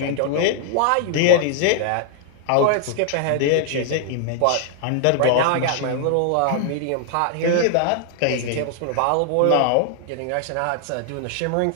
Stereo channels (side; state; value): both; different; correlation -0.01